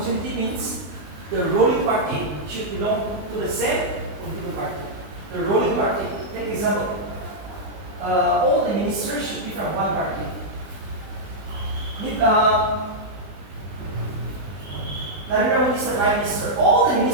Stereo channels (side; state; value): left; late; 20 ms